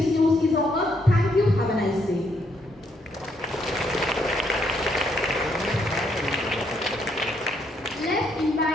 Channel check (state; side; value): normal; both; correlation 0.73